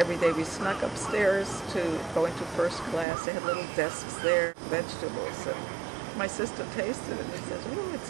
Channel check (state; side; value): drops out; left; at 3.1 s